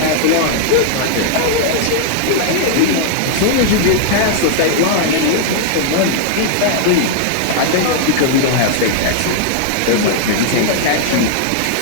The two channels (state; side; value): different; both; correlation 0.00